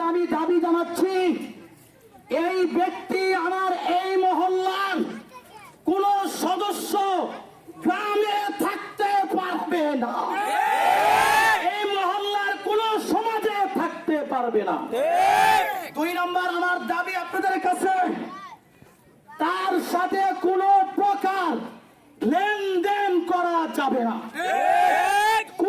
আমি দাবি জানাচ্ছি, এই ব্যক্তি আমার এই মহল্লার কোন সদস্য গ্রামে থাকতে পারবে না, এই মহল্লার কোন সমাজে থাকতে পারবে না। দুই নম্বর, আমার দাবি আপনাদের কাছে, তার সাথে কোন প্রকার লেনদেন করা যাবে না।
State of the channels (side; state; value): both; identical; correlation 1.00